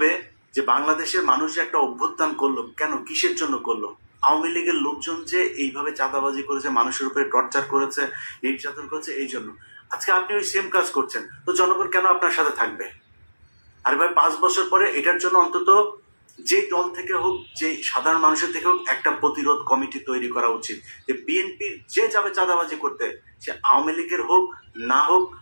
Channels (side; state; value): both; inverted; correlation -1.00